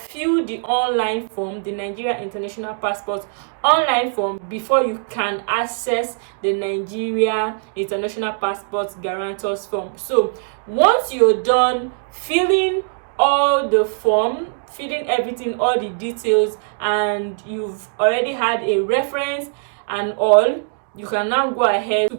the online form, the Nigeria international passport online form, before you can access the Nigeria international passport guarantors form. So once you're done filling all the form, filling everything, all the details, and you've already had a reference and all, you can now go ahead to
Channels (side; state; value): left; silent; digital silence